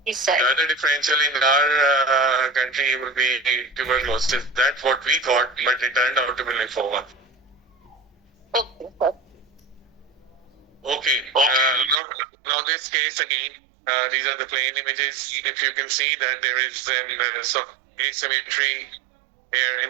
Yes, sir. The other differential in our country will be tuberculosis. That's what we thought, but it turned out to be lymphoma. Okay, sir. Okay. Now this case again, these are the plain images. If you can see that there is some asymmetry here in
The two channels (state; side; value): drops out; left; at 12.0 s